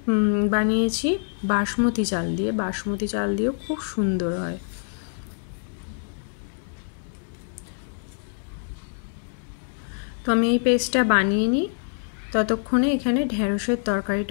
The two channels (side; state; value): right; silent; 62 dB below the other